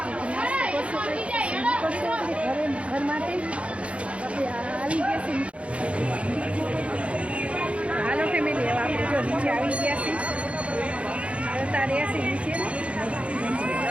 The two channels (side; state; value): left; late; 0.062 ms